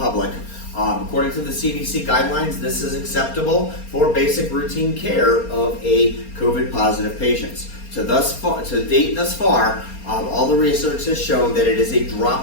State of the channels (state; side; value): late; right; 4.3 ms